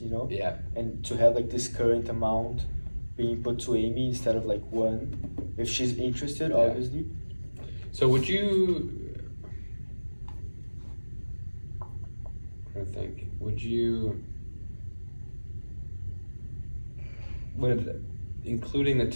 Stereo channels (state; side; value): inverted; both; correlation -1.00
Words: you know? Yeah. And to have like this current amount being put to Amy instead of like one, if she's interested, Yeah. obviously. So would you? I think. Would including the